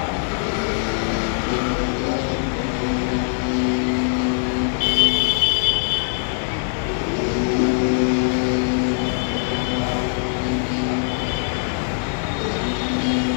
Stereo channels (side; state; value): right; silent; 64 dB below the other